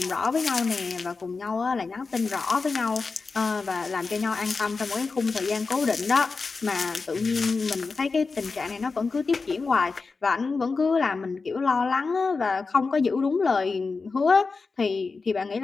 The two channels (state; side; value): quieter; right; 4.3 dB